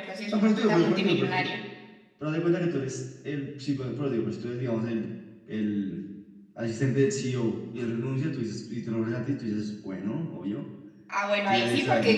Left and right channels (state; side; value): identical; both; correlation 1.00